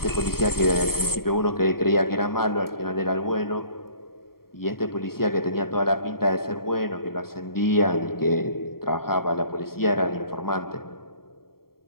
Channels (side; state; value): right; late; 0.93 ms